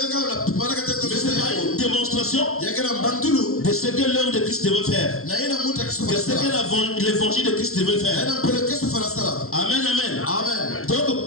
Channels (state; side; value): late; right; 0.63 ms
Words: pas une démonstration de ce que l'œuvre de Christ devait faire, de ce que l'évangile de Christ devait faire. Amen, amen. Donc